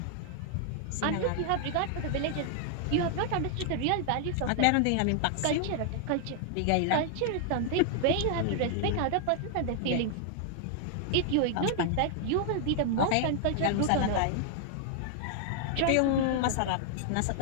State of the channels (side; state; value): both; different; correlation 0.00